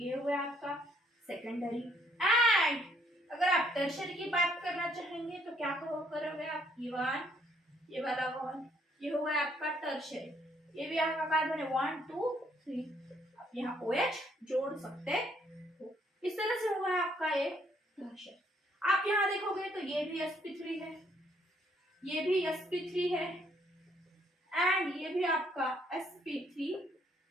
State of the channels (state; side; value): normal; both; correlation 0.68